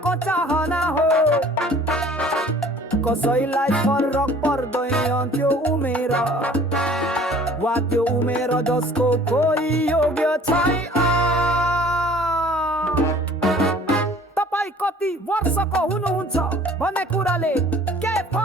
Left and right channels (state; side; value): normal; both; correlation 0.51